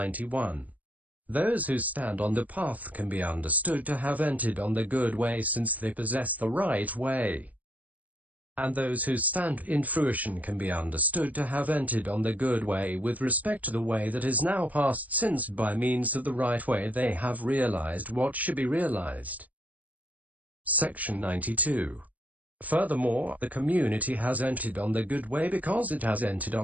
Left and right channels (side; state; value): left; late; 0.075 ms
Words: Those who stand on the path can be understood to have entered on the good way since they possess the right way. And those who stand in fruition can be understood to have entered on the good way with respect to the way that is now past, since by means of the right way they have realized what should be realized. Section 92. Furthermore, the community has entered on the good way because it has entered